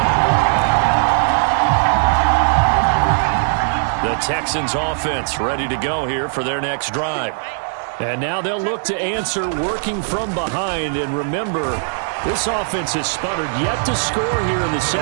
The Texans offense ready to go here for their next drive. And now they'll look to answer working from behind. And remember, this offense has sputtered yet to score here in the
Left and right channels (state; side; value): silent; left; digital silence